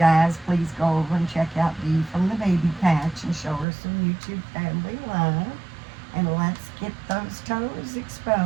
please go over and check out Dee from the Baby Patch and show her some YouTube family love. And let's get those toes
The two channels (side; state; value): left; drops out; at 3.7 s